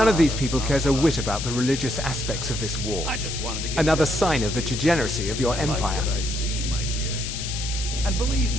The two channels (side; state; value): left; noise; hiss, 6 dB below the sound